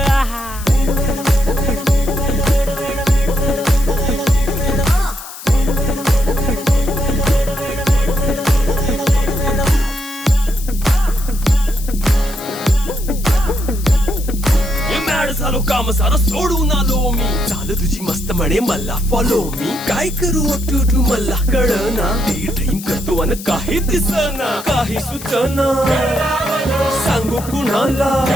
झालो काम सारं सोडून आलो मी चाल तुझी मस्त म्हणे मला फॉलो मी काय करू टू मला कळना ती ड्रीम करतो आणि काही दिसना काही सुचना सांगू कुणाला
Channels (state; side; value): noise; left; hiss, 13 dB below the sound